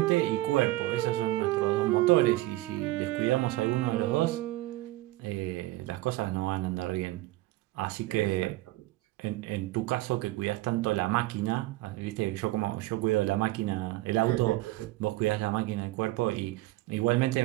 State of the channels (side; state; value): left; quieter; 18.2 dB